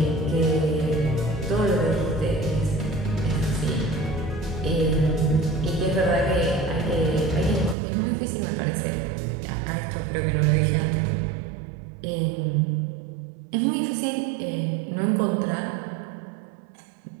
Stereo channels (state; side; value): drops out; left; at 7.8 s